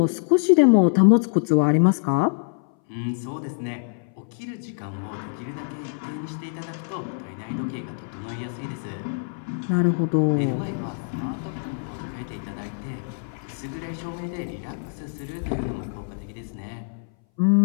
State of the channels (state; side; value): silent; right; 60 dB below the other